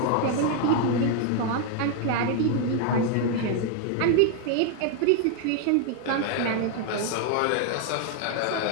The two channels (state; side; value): different; both; correlation 0.01